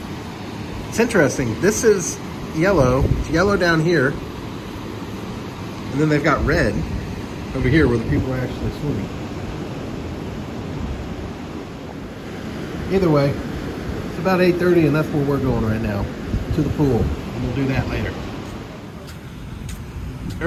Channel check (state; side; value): identical; both; correlation 1.00